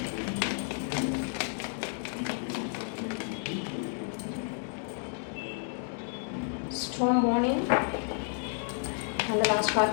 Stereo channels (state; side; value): silent; right; 57 dB below the other